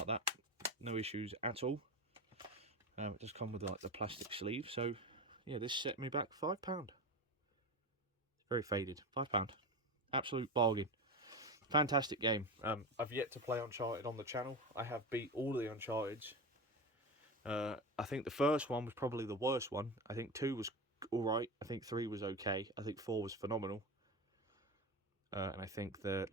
that. No issues at all. It does come with like the plastic sleeve. So yeah, this set me back £5. It's very faded. £5. Absolute bargain. Fantastic game. I've yet to play Uncharted on the channel. I have beat all of the Uncharteds. I think the first one was probably the worst one. I think 2 was alright. I think 3 was okay. I think 4 was phenomenal. And I think the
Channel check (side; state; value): both; normal; correlation 0.22